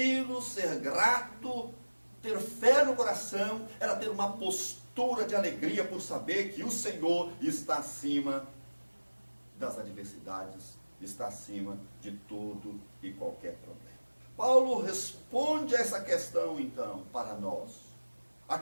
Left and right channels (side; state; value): both; inverted; correlation -1.00